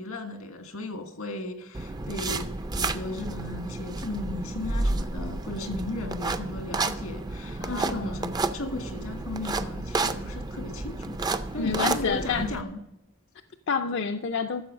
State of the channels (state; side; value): normal; both; correlation 0.36